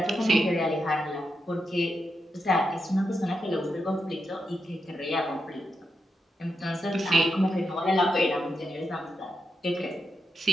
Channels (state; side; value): normal; both; correlation 0.85